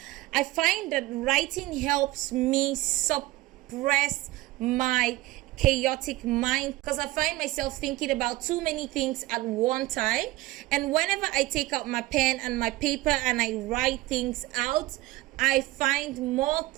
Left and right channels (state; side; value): quieter; left; 18.6 dB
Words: I find that writing helps me suppress my chaotic mind, because I find myself thinking about too many things at one time, and whenever I take out my pen and my paper and I write things out, I find more